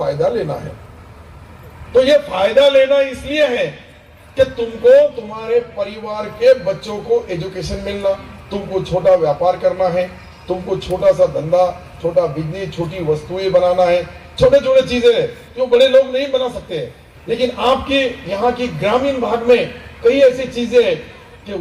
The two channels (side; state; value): both; identical; correlation 1.00